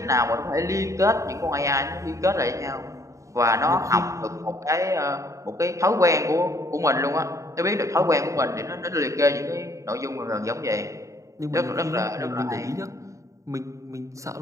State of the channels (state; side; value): late; left; 0.15 ms